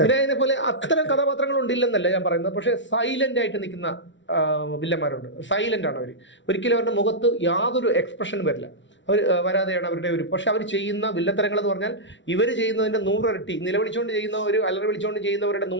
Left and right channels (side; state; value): right; late; 0.54 ms